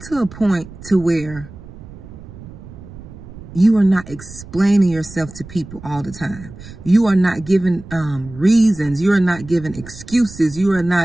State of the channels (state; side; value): noise; right; rumble, 16 dB below the sound